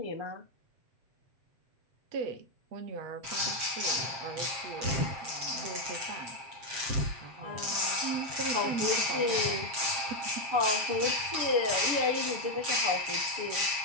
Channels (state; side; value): late; left; 7.6 ms